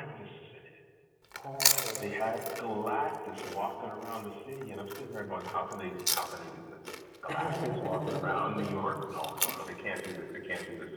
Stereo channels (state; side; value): identical; both; correlation 1.00